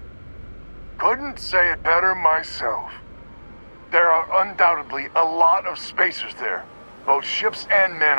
Couldn't say it better myself. There are undoubtedly a lot of Spacers there, both ships and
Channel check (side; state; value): both; inverted; correlation -1.00